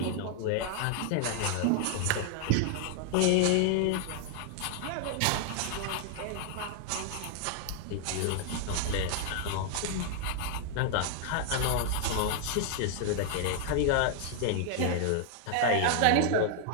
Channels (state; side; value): different; both; correlation 0.00